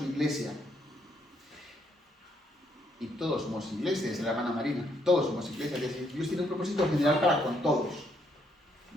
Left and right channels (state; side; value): normal; both; correlation 0.73